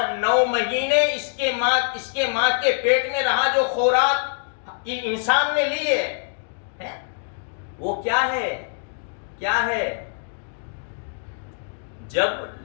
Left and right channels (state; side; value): silent; right; digital silence